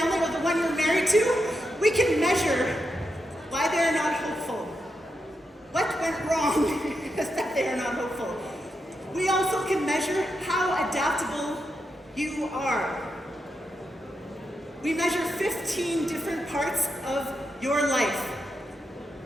or the one you're married to? We can measure why they're not hopeful. What went wrong is that they are not hopeful. We also can measure how adaptable you are. We measure 15 different parts of your life.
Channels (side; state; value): both; normal; correlation 0.85